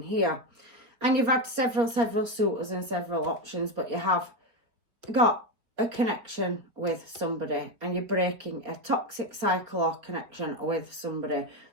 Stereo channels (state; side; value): late; left; 4.7 ms